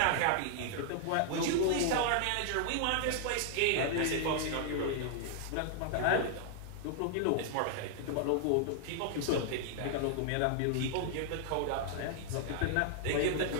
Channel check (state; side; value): different; both; correlation 0.00